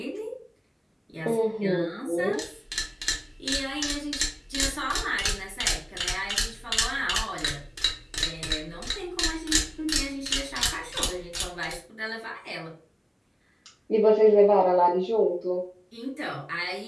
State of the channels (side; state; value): both; identical; correlation 1.00